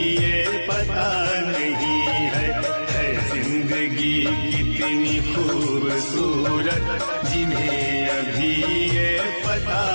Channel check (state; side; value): inverted; both; correlation -1.00